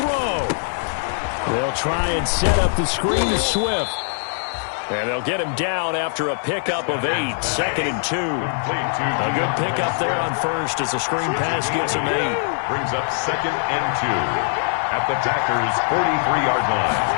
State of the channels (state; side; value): silent; right; digital silence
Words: They'll try and set up the screen to Swift. And they'll get him down after a pickup of 8, 2nd and 2. A good pickup there on first as the screen pass gets him 8. Brings up 2nd and 2 at the Packers' 43-yard